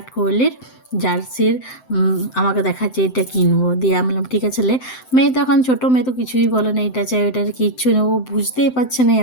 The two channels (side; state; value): right; late; 7.8 ms